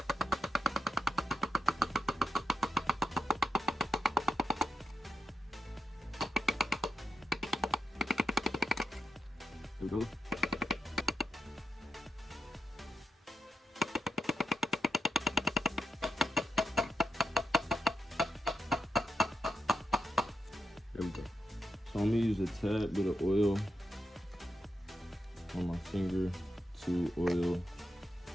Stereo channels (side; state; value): both; normal; correlation 0.86